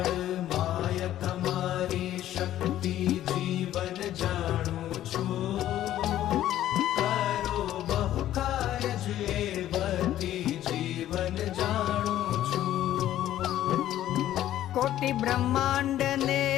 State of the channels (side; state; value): right; quieter; 12.8 dB